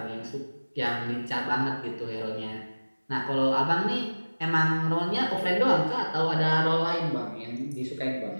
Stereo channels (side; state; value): both; inverted; correlation -1.00